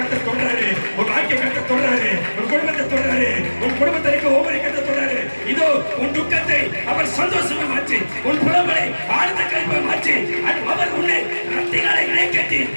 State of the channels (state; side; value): inverted; both; correlation -1.00